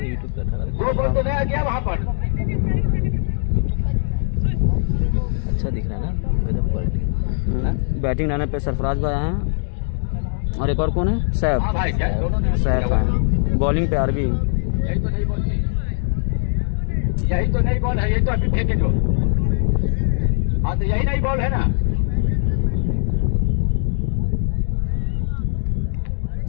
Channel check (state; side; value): silent; right; 65 dB below the other